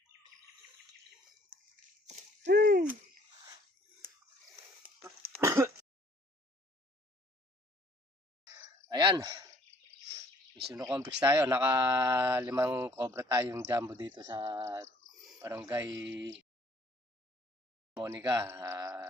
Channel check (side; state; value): both; normal; correlation 0.59